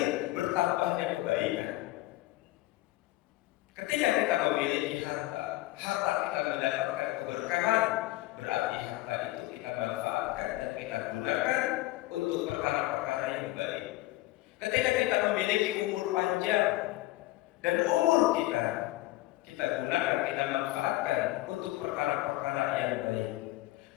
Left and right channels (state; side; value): quieter; right; 18.0 dB